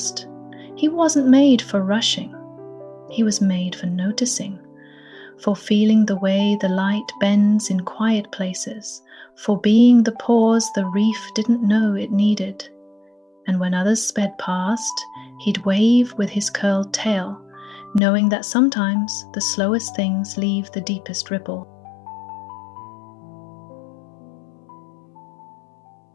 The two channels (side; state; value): right; drops out; at 18.0 s